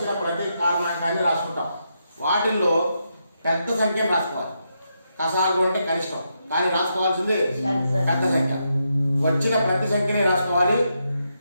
ప్రతి కారణాంకాన్ని రాసుకుంటాం. వాటిల్లో పెద్ద సంఖ్యను రాసుకోవాలి. కసాగు అంటే కనిష్టం, కానీ రాసుకోవాల్సింది పెద్ద సంఖ్య. వచ్చిన ప్రతి సంఖ్యని రాసుకోవాలి,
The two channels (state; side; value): inverted; both; correlation -0.82